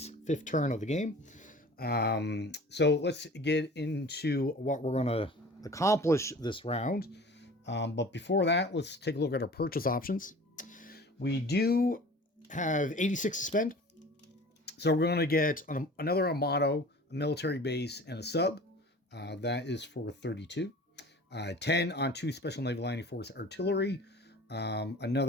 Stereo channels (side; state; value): both; normal; correlation 0.43